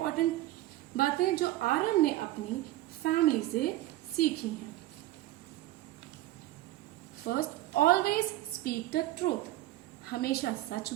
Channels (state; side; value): quieter; left; 16.1 dB